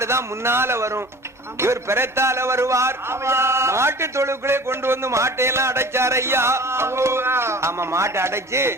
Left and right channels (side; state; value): both; normal; correlation 0.42